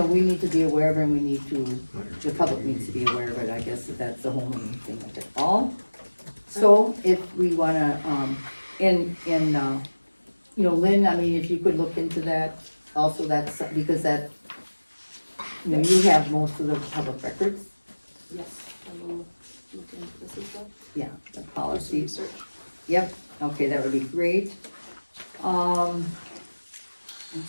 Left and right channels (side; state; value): both; inverted; correlation -1.00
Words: need to be aware of and we need to, the public needs to be aware of it, I guess that's the whole main thing of it all. So if we wanna, Lynn, I mean, if you could look into that, also that's, because that, you have most of the public records, Yes, I will look into this as well. yeah, the Do some policy, research. yep, okay, that would be great.